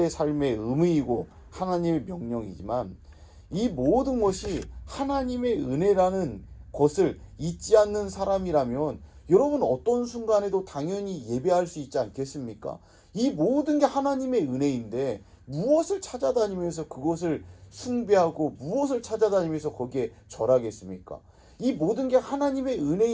삶의 의무이고 하나님의 명령이지만 이 모든 것이 하나님의 은혜라는 것을 잊지 않는 사람이라면 여러분 어떤 순간에도 당연히 예배할 수 있지 않겠습니까? 이 모든 게 하나님의 은혜인데 무엇을 찾아다니면서 그것을 숭배하고 무엇을 찾아다니면서 거기에 절하겠습니까? 이 모든 게 하나님의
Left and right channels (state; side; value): identical; both; correlation 1.00